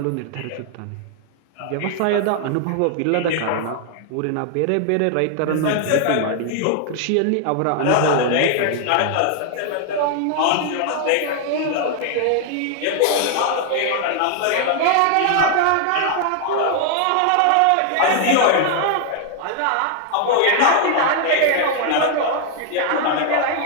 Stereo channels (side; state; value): both; different; correlation 0.00